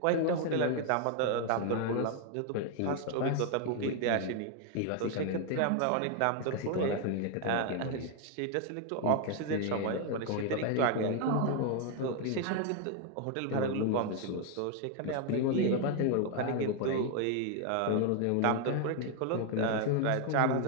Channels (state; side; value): different; both; correlation 0.00